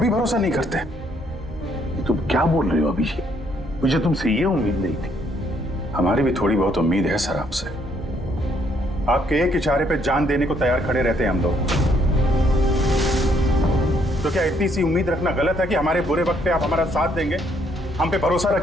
भरोसा नहीं करते। ये तुम क्या बोल रहे हो अभिजीत? मुझे तुमसे ये उम्मीद नहीं थी। हमारी भी थोड़ी बहुत उम्मीद है सर आपसे। आपके एक इशारे पे जान देने को तैयार खड़े रहते हैं हम लोग। तो क्या इतनी सी उम्मीद रखना गलत है कि हमारे बुरे वक्त पे आप हमारा साथ देंगे, हम पे भरोसा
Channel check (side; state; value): both; normal; correlation 0.69